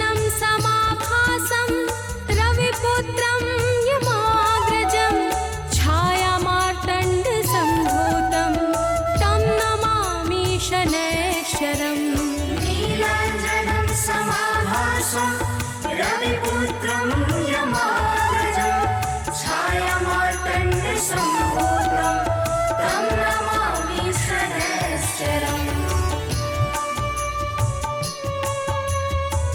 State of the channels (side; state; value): both; identical; correlation 1.00